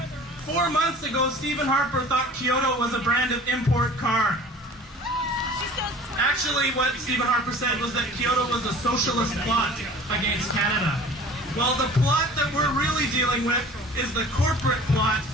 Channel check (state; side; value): normal; both; correlation 0.44